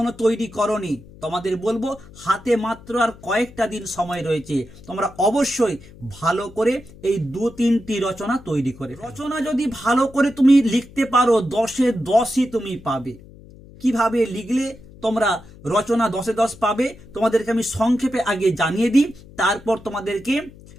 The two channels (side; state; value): left; noise; hum, 21 dB below the sound